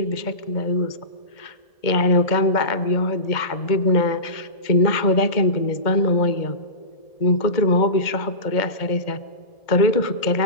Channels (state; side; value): late; right; 2.1 ms